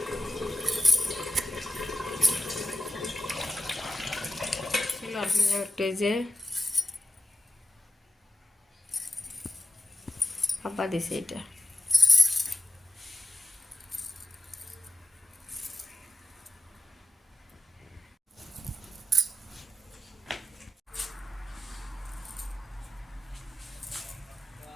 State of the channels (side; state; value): both; normal; correlation 0.90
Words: একটা এই যে আব্বা দিছে এটা।